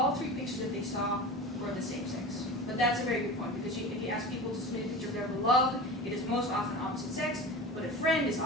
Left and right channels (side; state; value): both; normal; correlation 0.32